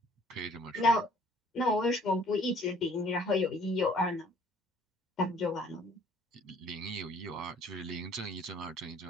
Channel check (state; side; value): normal; both; correlation 0.57